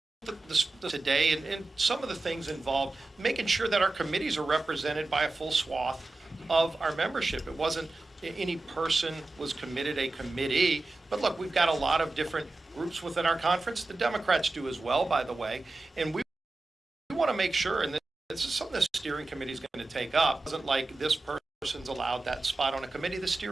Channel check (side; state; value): left; quieter; 3.1 dB